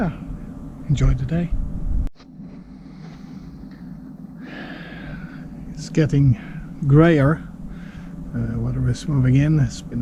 enjoy the day. getting grayer. Weather is moving in. It's been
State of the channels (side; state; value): both; identical; correlation 1.00